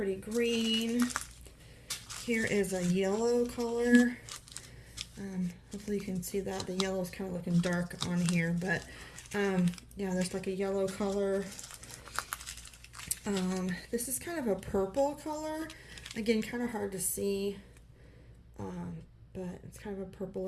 green. Here is a yellow color. Hopefully you can see that. The yellow is kind of looking dark on here, but yeah, there's like a yellow color. This is kind of a purple color. Again, kind of hard to see, but it's kind of a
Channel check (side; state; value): both; identical; correlation 1.00